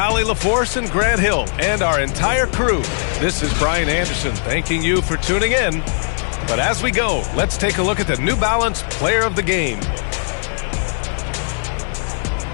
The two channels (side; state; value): right; silent; digital silence